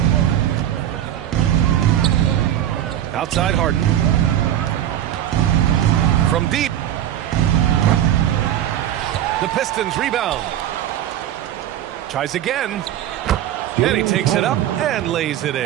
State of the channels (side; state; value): left; quieter; 11.5 dB